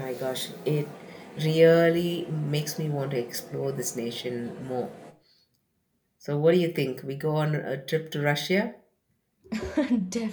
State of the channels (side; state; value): both; identical; correlation 1.00